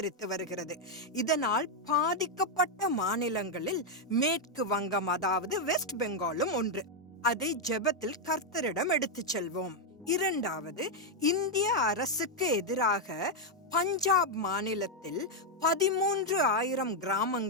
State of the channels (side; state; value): both; normal; correlation 0.01